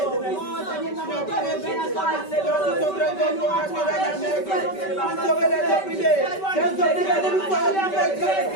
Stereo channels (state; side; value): late; right; 5.2 ms